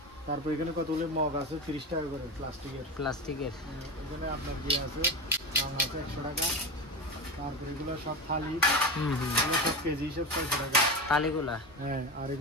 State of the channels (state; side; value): normal; both; correlation 0.22